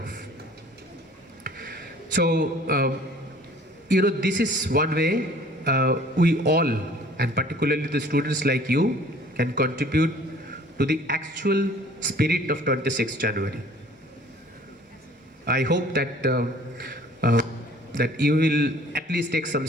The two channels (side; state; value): both; normal; correlation 0.52